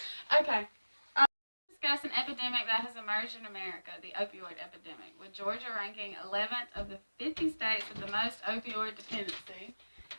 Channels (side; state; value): both; inverted; correlation -1.00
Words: Okay. Discuss an epidemic that has emerged in America, the opioid epidemic, with Georgia ranking 11th of the 50 states with the most opioid dependency